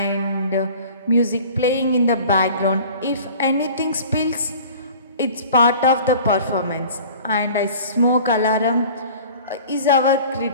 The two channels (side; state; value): both; inverted; correlation -0.44